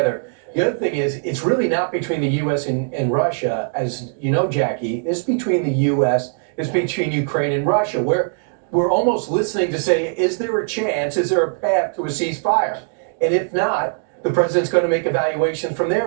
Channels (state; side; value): silent; left; 65 dB below the other